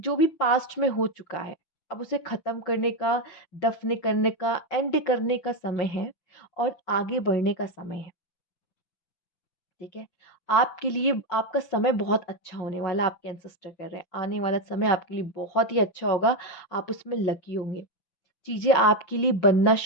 भी पास्ट में हो चुका है, अब उसे खत्म करने का, दफन करने का, एंड करने का समय है और आगे बढ़ने का समय है। ठीक है, आपके लिए आपका समय बहुत अच्छा होने वाला, आपके एंसेस्टर कर रहे हैं, आने वाला समय आपके लिए बहुत ही अच्छा होगा। आप उसमें लकी होंगे, चीजें आपके लिए बनना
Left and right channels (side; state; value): right; late; 5.9 ms